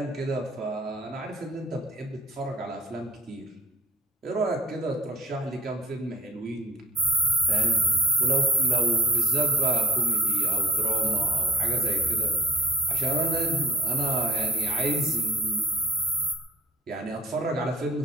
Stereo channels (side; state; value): both; normal; correlation 0.44